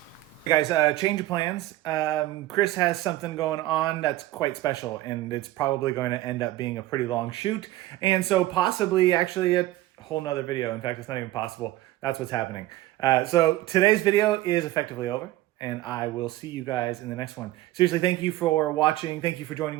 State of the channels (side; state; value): left; quieter; 16.1 dB